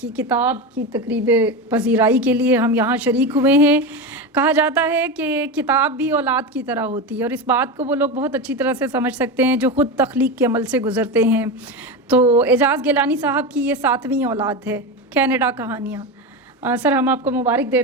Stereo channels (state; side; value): normal; both; correlation 0.19